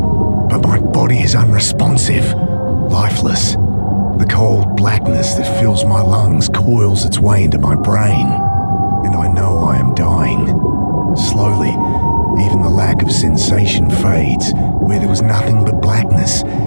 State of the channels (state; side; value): inverted; both; correlation -1.00